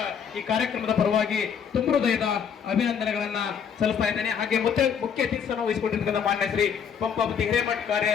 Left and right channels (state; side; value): quieter; right; 7.4 dB